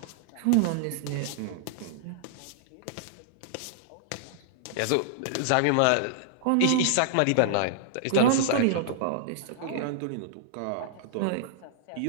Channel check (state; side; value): different; both; correlation -0.01